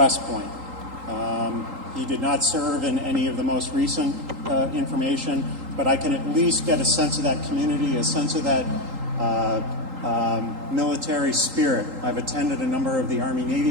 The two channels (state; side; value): late; left; 3.8 ms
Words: Point. He did not serve in any of the most recent information, but I can at least get a sense of that community, a sense of that military spirit. I've attended a number of the